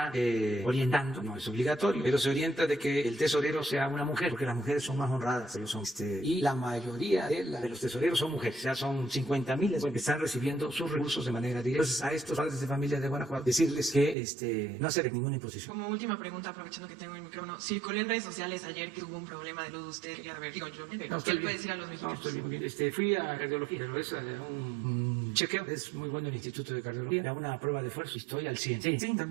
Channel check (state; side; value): drops out; left; at 14.2 s